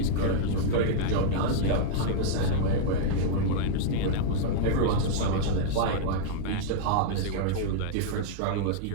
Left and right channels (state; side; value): different; both; correlation -0.02